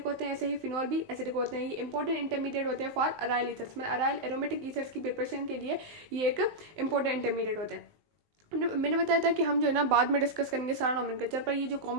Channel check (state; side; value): late; left; 19 ms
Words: होते हैं, ऐसे ही फिनोल भी एसिडिक होते हैं। ये इंपॉर्टेंट इंटरमीडिएट होते हैं फॉर अराइल ईथर्स, मतलब अराइल एरोमेटिक ईथर्स की प्रिपरेशन के लिए ये एक इंपॉर्टेंट इंटरमीडिएट होते हैं। मैंने बताया था कि हम जो है ना बाद में डिस्कस करेंगे सारा नॉमेनक्लेचर, पर ये जो